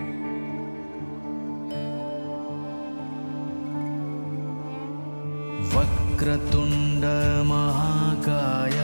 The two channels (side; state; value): both; inverted; correlation -1.00